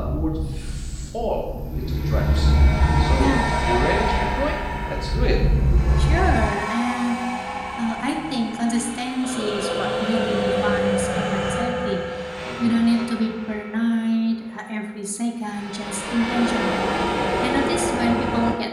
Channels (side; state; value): both; identical; correlation 1.00